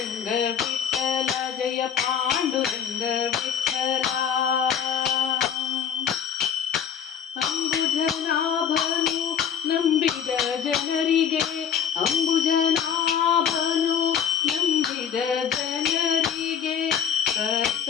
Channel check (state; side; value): quieter; right; 8.0 dB